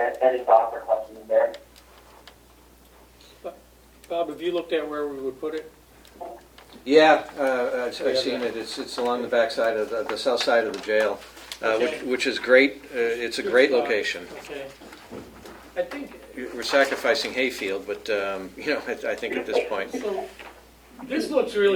Any thoughts or questions there? Bob, have you looked at where we would put it? Yeah, I've seen it. It's along the backside of the south side of the jail, which is great. It's a great location. Okay. I think, We're sacrificing hayfield, but I think at this point, so this looks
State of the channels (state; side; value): identical; both; correlation 1.00